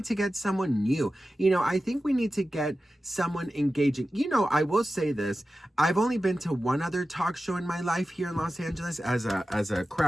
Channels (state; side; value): normal; both; correlation 0.94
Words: to get someone new. I think we need to get someone engaging. I will say this. I've only been to one other talk show in my life here in Los Angeles as a